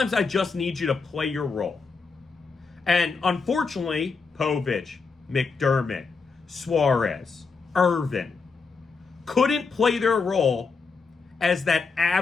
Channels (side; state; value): right; quieter; 4.8 dB